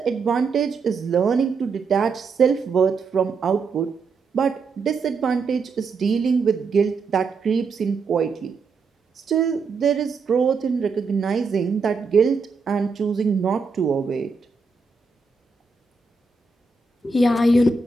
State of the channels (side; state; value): left; quieter; 4.5 dB